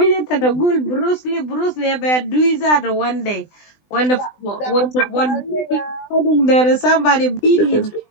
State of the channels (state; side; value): late; right; 20 ms